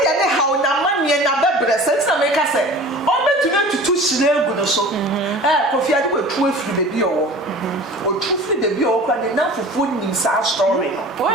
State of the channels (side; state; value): both; normal; correlation 0.41